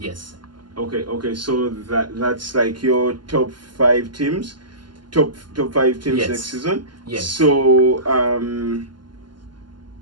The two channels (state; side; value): late; left; 0.71 ms